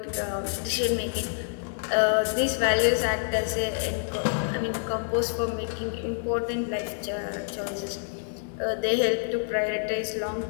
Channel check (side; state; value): right; silent; digital silence